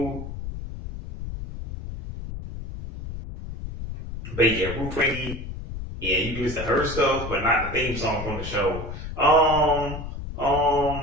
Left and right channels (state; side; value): noise; left; rumble, 8 dB below the sound